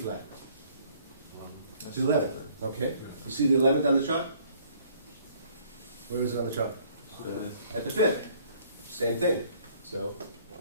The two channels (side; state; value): both; inverted; correlation -0.59